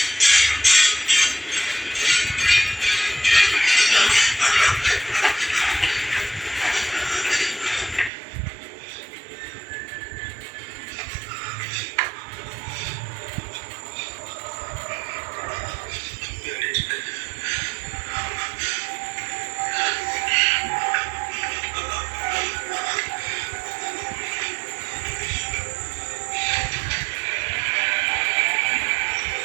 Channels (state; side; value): drops out; left; at 8.1 s